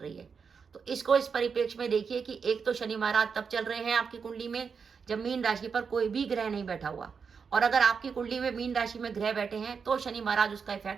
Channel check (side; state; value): left; quieter; 5.9 dB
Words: है। तो इसको इस परिप्रेक्ष्य में देखिए कि एक तो शनि महाराज तब चल रहे हैं आपकी कुंडली में जब मीन राशि पर कोई भी ग्रह नहीं बैठा हुआ, और अगर आपकी कुंडली में मीन राशि में ग्रह बैठे हैं तो शनि महाराज उसका